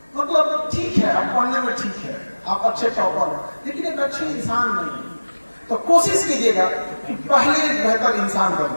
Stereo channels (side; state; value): both; inverted; correlation -1.00